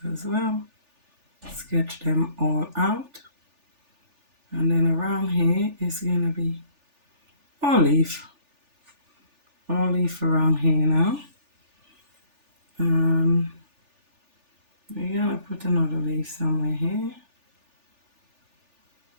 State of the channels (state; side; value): late; left; 3.4 ms